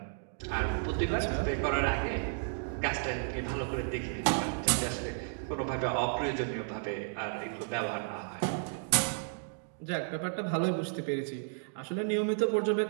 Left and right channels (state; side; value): silent; left; digital silence